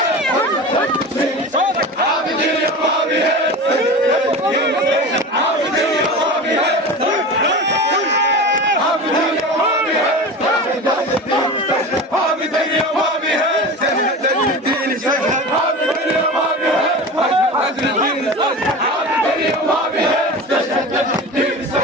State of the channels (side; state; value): both; normal; correlation 0.30